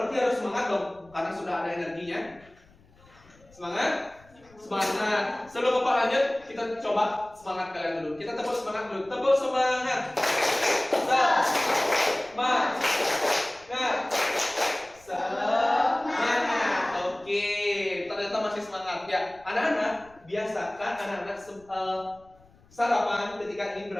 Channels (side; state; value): left; noise; rumble, 28 dB below the sound